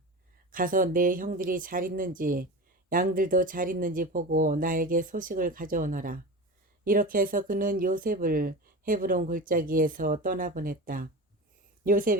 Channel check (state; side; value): normal; both; correlation 0.29